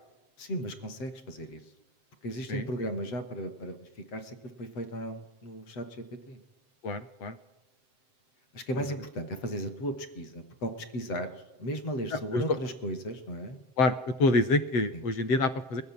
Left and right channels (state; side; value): late; right; 7.7 ms